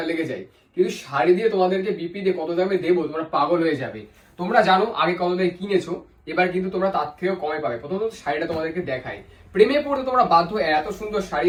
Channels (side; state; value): both; identical; correlation 1.00